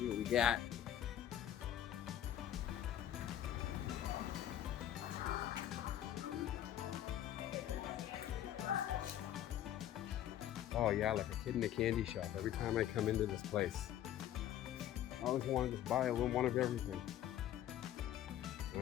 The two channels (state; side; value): quieter; right; 11.5 dB